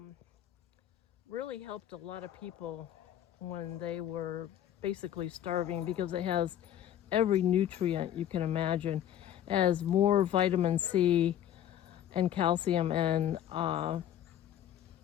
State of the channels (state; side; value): quieter; right; 11.0 dB